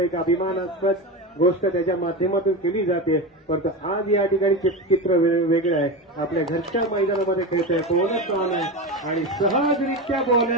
अभिमानास्पद गोष्ट त्याच्या माध्यमातून केली जाते. परंतु आज या ठिकाणी चित्र वेगळं आहे. आपल्या घरच्या मैदानामध्ये खेळतोय. बोनस ऑन आहे आणि सहजरित्या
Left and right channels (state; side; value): normal; both; correlation 0.21